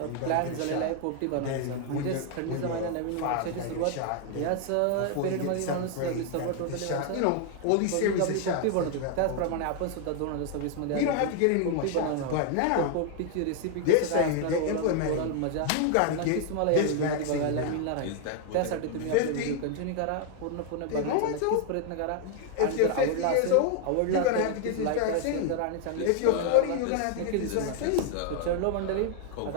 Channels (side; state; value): both; different; correlation 0.00